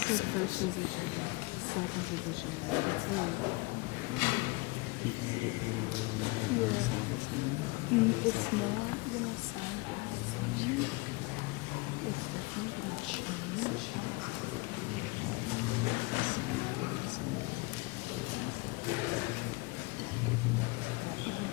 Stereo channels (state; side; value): quieter; right; 25.3 dB